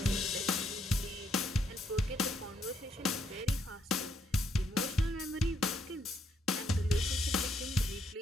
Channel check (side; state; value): both; normal; correlation 0.73